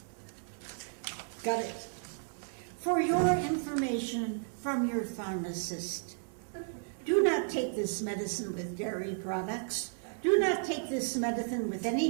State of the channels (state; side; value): silent; left; 55 dB below the other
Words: Got it. For your information from your pharmacist, do not take this medicine with dairy products. Do not take this medicine with any